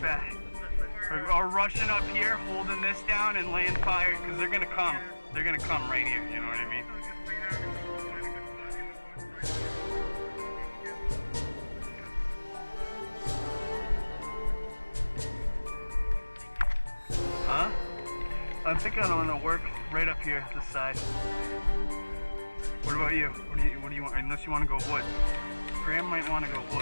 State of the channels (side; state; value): both; inverted; correlation -1.00